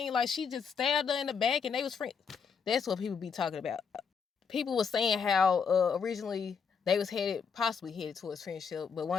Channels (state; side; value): quieter; right; 6.2 dB